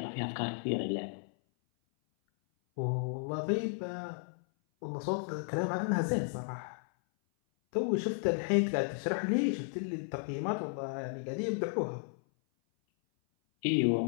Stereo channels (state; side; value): silent; right; 55 dB below the other